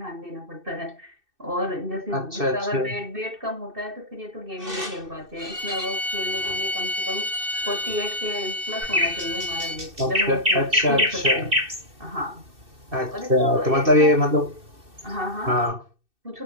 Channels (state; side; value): late; left; 2.6 ms